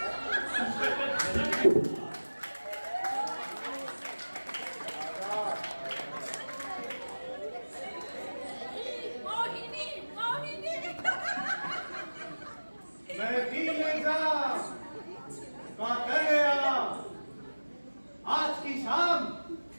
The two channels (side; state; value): both; inverted; correlation -1.00